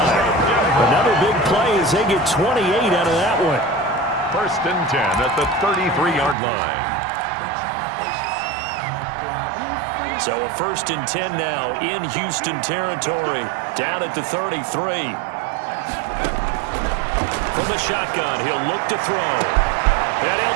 Another big play as they get 28 out of that one. First and 10 at the 33-yard line. So a first and 10 now in Houston territory. Down at the 33. From the shotgun, he'll look to throw. And he'll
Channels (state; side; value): drops out; left; at 6.4 s